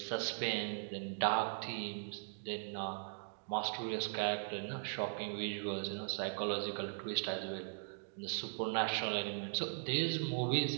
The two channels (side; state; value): left; silent; digital silence